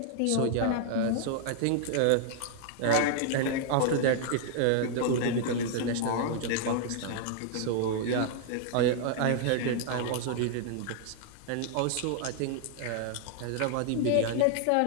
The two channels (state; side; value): different; both; correlation -0.01